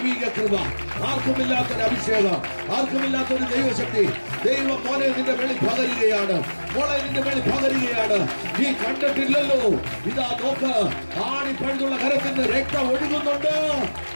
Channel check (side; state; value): both; inverted; correlation -1.00